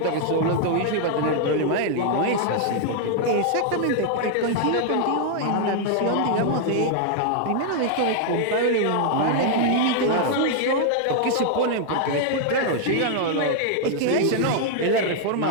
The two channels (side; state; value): both; different; correlation 0.00